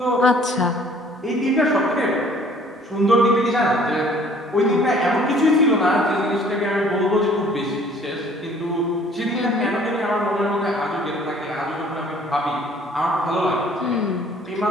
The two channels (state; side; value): normal; both; correlation 0.55